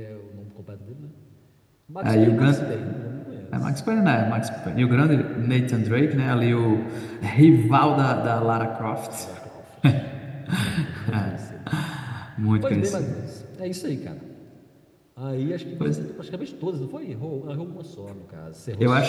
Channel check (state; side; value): identical; both; correlation 1.00